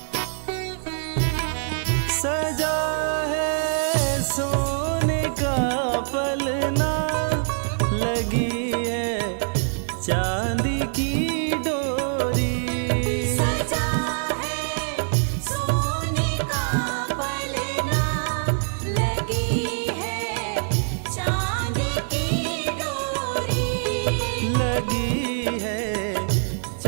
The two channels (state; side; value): silent; left; digital silence